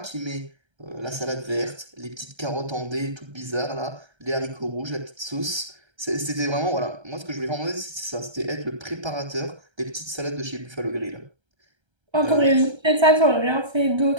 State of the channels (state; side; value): late; left; 1.3 ms